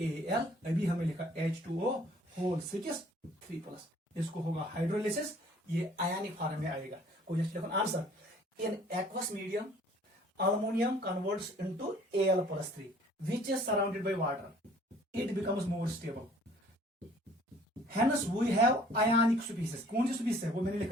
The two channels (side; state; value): both; normal; correlation 0.55